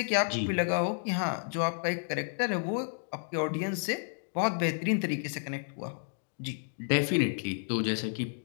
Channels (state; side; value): silent; right; digital silence